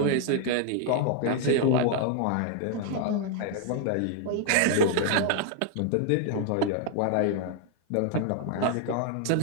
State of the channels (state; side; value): different; both; correlation 0.00